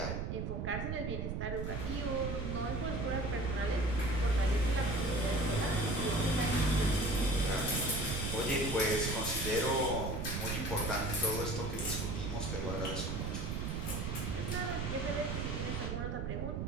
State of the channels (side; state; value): right; noise; rumble, 2 dB below the sound